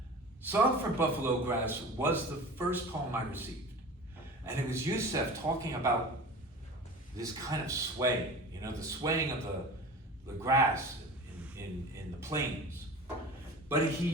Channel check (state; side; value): normal; both; correlation 0.37